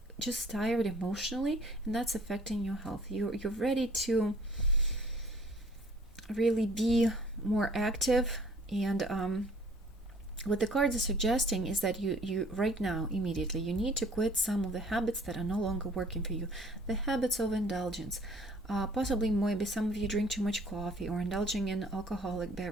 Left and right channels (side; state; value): both; normal; correlation 0.54